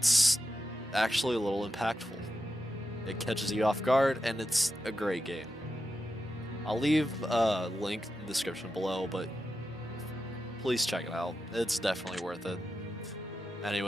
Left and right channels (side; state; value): both; normal; correlation 0.89